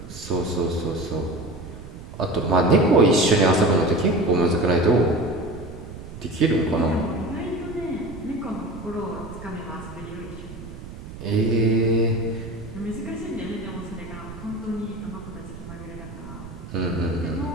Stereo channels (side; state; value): right; noise; rumble, 13 dB below the sound